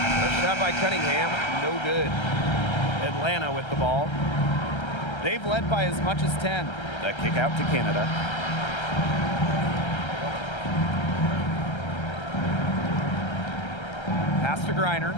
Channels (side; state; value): right; late; 1.3 ms